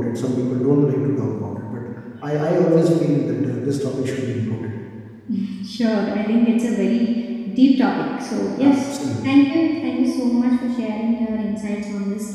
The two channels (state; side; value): identical; both; correlation 1.00